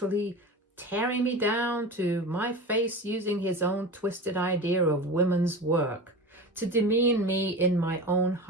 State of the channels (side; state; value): both; normal; correlation 0.30